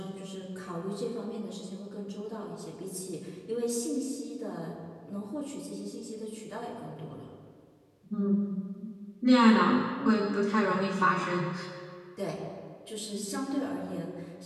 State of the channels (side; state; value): both; identical; correlation 1.00